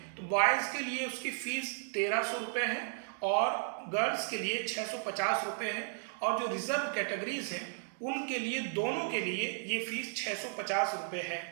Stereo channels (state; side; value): silent; left; digital silence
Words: तो बॉयज़ के लिए उसकी फीस 1300 रुपये है और गर्ल्स के लिए 650 रुपये है, और जो रिजर्व कैटेगरीज हैं उनके लिए, दोनों के लिए ये फीस 650 रुपये है।